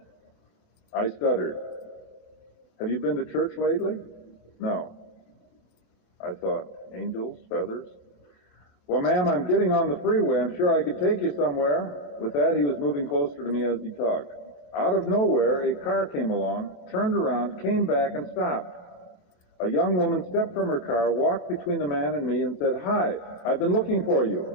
I stuttered. "Have you been to church lately?" "No." I thought, angels, feathers. "Well, ma'am, I'm getting on the freeway. I'm sure I could take you somewhere." With that, he was moving closer to me as he talked. Out of nowhere, a car came along, turned around, came back, and stopped. A young woman stepped from her car, walked between the man and me, and said, "Hi, I've been looking for you."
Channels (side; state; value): right; late; 28 ms